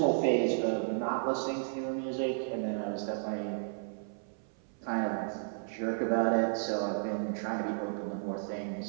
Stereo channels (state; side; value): silent; left; 56 dB below the other